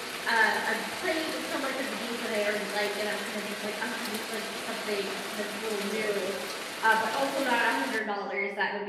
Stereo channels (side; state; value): both; identical; correlation 1.00